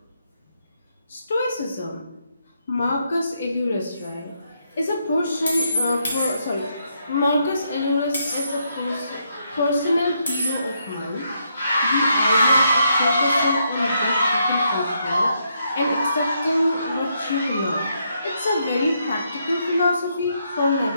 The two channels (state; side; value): inverted; both; correlation -0.77